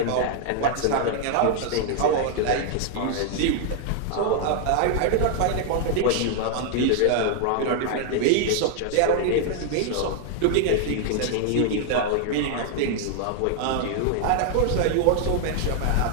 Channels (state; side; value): different; both; correlation 0.00